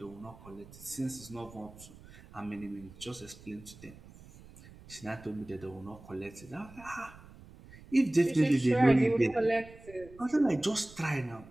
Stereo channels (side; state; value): right; noise; rumble, 20 dB below the sound